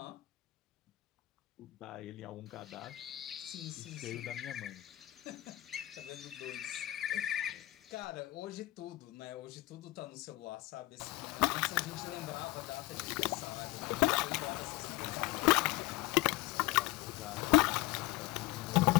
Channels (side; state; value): right; quieter; 17.9 dB